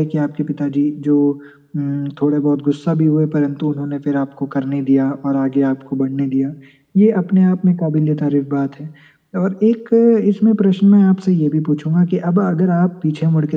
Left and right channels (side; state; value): both; identical; correlation 1.00